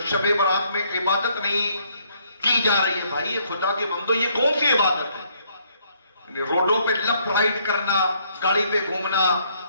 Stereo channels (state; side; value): inverted; both; correlation -0.68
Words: شب برات میں عبادت نہیں کی جا رہی ہے. بھائی یہ خدا کے بندو, یہ کون سی عبادت ہے؟ روڈوں پہ لیفٹ رائٹ کرنا, گاڑی پہ گھومنا,